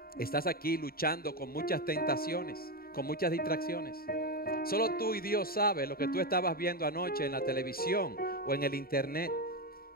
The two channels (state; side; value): late; right; 0.43 ms